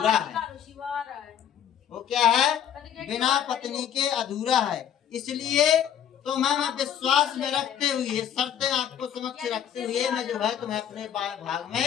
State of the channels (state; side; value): quieter; right; 9.4 dB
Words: है। वो क्या है? बिना पत्नी के अधूरा है। इसलिए तो मैं विश्वास में रखते हुए, शर्तें आपको समक्ष रखते हुए मैं जो है तुम्हें अपने भाग